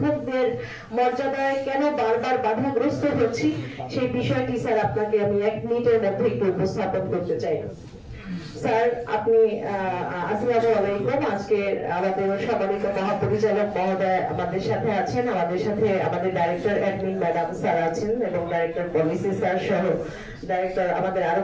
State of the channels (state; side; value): identical; both; correlation 1.00